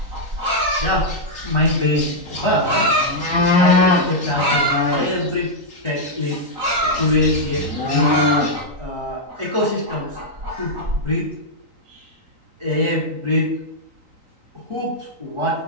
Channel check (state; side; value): late; left; 3.9 ms